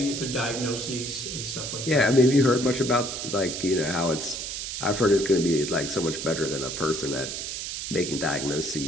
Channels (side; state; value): right; noise; hiss, 5 dB below the sound